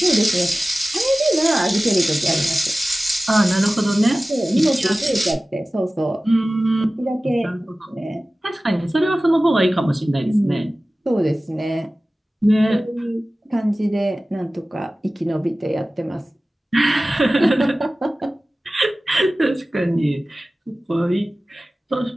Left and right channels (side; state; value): both; normal; correlation 0.97